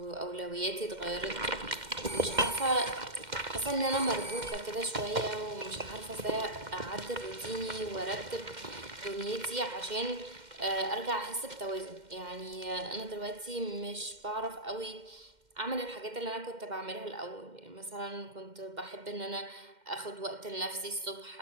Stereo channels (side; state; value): left; late; 2.1 ms